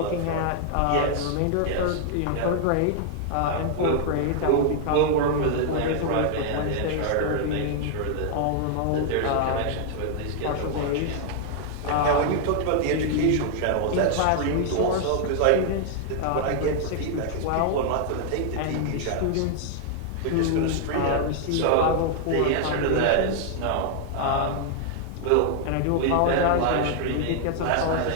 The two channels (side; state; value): both; different; correlation 0.00